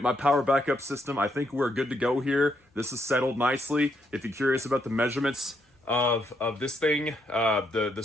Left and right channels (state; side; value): normal; both; correlation 0.76